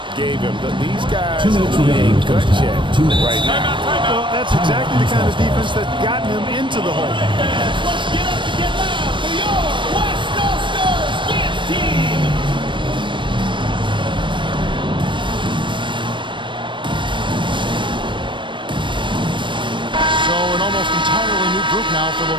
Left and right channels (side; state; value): left; late; 0.24 ms